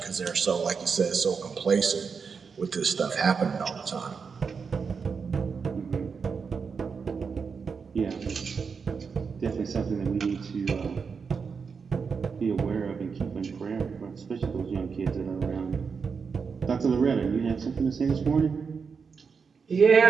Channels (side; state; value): left; quieter; 5.6 dB